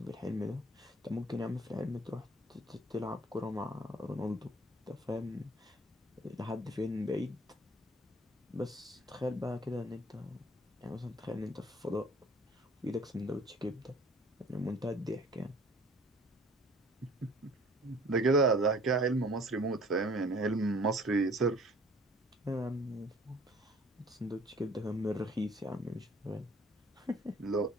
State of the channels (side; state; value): both; normal; correlation 0.53